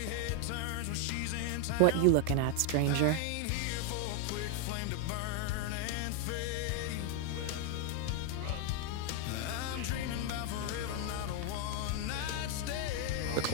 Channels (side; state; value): both; different; correlation 0.01